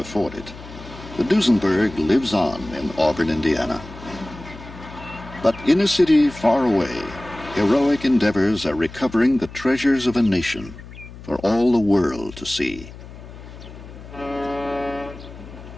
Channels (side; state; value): left; noise; hum, 16 dB below the sound